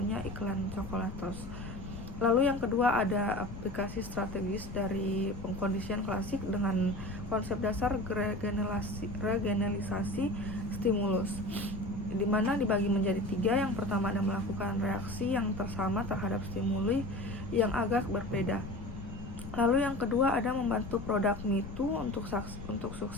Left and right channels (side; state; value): left; noise; rumble, 11 dB below the sound